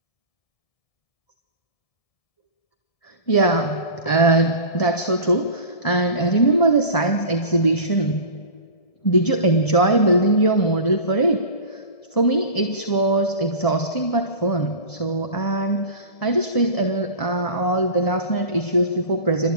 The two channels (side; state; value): right; late; 1.7 ms